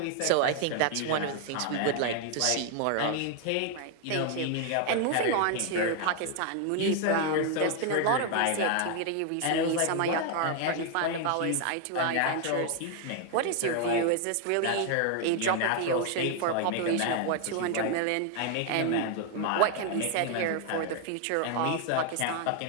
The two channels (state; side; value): different; both; correlation 0.00